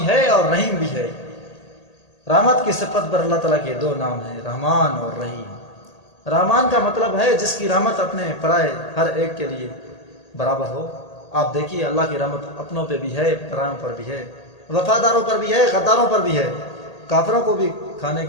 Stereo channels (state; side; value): late; right; 1.8 ms